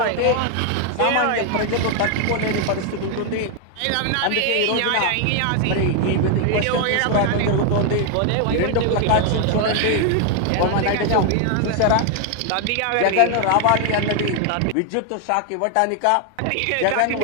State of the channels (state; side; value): different; both; correlation 0.00